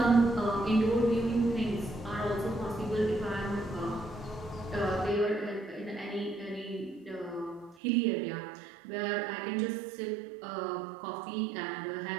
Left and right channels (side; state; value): left; drops out; at 7.8 s